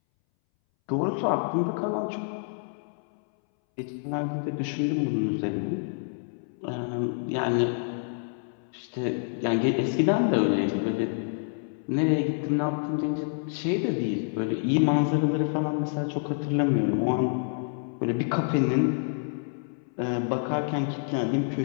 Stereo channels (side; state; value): right; silent; 60 dB below the other